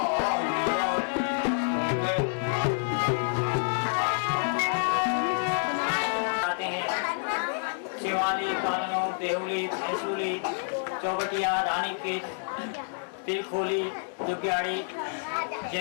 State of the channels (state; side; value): silent; right; 59 dB below the other